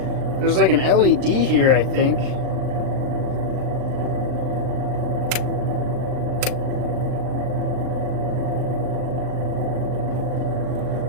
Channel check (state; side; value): late; left; 39 ms